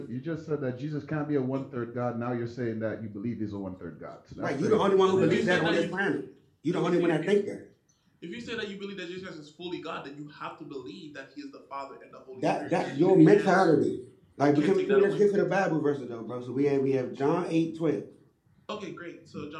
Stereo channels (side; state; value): both; identical; correlation 1.00